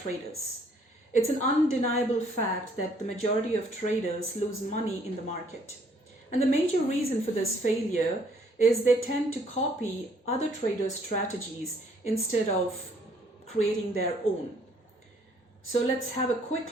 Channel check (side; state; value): both; normal; correlation 0.64